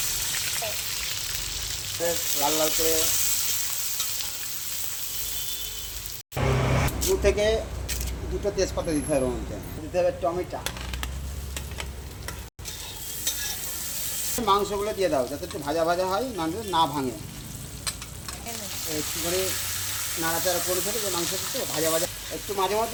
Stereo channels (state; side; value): identical; both; correlation 1.00